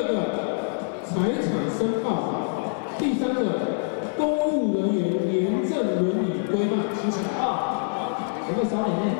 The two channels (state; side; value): silent; right; digital silence